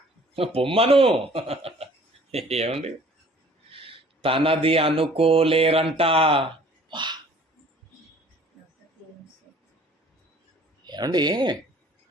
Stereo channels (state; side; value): normal; both; correlation 0.53